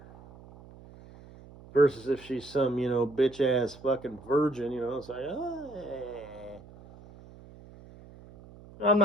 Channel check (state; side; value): noise; right; hum, 20 dB below the sound